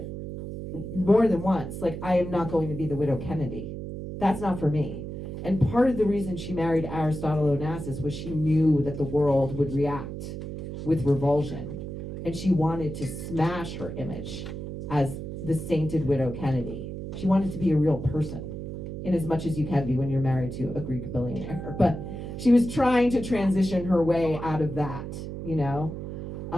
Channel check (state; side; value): noise; right; hum, 7 dB below the sound